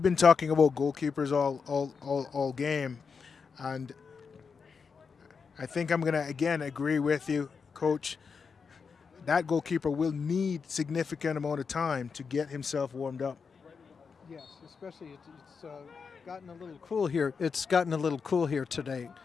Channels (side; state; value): right; quieter; 5.6 dB